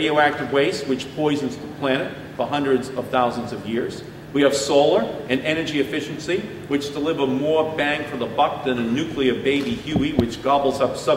waste, which poisons the planet for hundreds of thousands of years. We have solar and energy efficiency, which deliver more bang for the buck than a nuclear baby Huey, which gobbles up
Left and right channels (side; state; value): both; identical; correlation 1.00